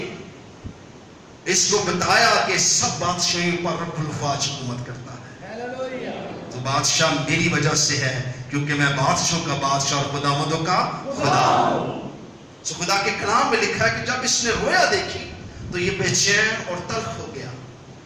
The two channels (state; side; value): identical; both; correlation 1.00